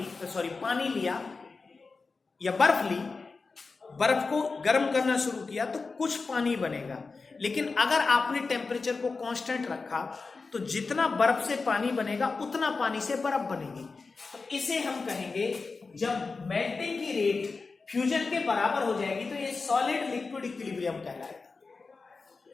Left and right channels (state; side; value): quieter; right; 4.2 dB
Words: पानी लिया, या बर्फ ली, बर्फ को गर्म करना शुरू किया तो कुछ पानी बनेगा, लेकिन अगर आपने टेम्परेचर को कांस्टेंट रखा तो जितना बर्फ से पानी बनेगा उतना पानी से बर्फ बनेगी। तो इसे हम कहेंगे, जब मेल्टिंग की रेट फ्यूजन के बराबर हो जाएगी तो ये सॉलिड लिक्विड इक्विलिब्रियम कहलाएगा।